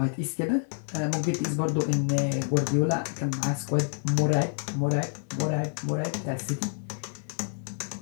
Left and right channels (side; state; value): right; silent; 59 dB below the other